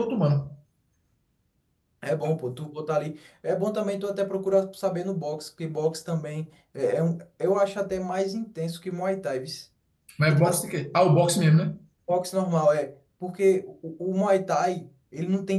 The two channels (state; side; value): identical; both; correlation 1.00